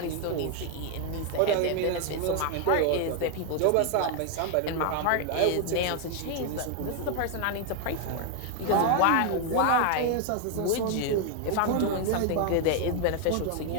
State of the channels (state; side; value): different; both; correlation 0.00